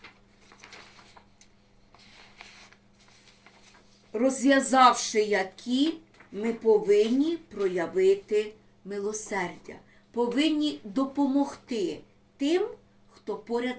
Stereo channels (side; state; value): both; identical; correlation 1.00